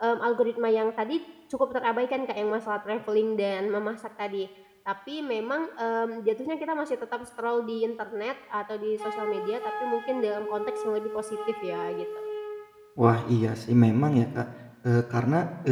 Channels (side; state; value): both; identical; correlation 1.00